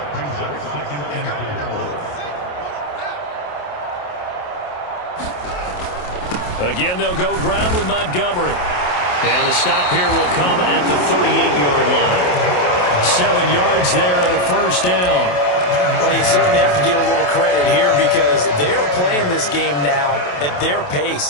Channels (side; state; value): right; late; 28 ms